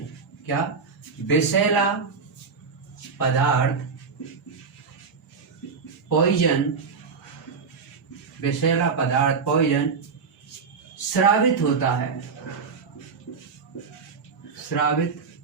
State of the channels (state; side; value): quieter; left; 5.3 dB